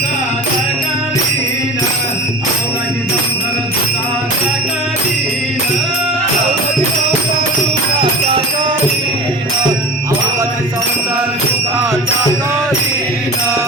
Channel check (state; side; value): normal; both; correlation 0.33